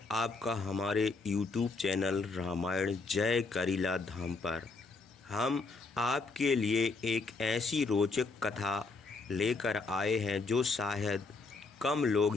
आपका हमारे YouTube चैनल रामायण जय करीला धाम पर। हम आपके लिए एक ऐसी रोचक कथा लेकर आए हैं जो शायद कम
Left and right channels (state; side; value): quieter; right; 3.9 dB